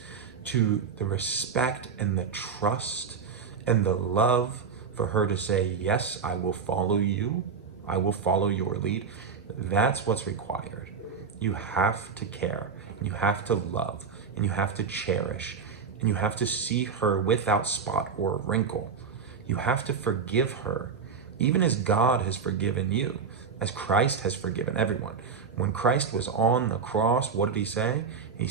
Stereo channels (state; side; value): quieter; left; 5.9 dB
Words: to the respect and the trust and the love for her to say, yes, I will follow you, I will follow your lead, that's what's required. You have to care, and you have to love, and you have to cherish, and you have to see her without spot or wrinkle. You have to forgive her, even as God has forgiven you, as Christ has forgiven everyone. When Christ was on the cross, what did he say? He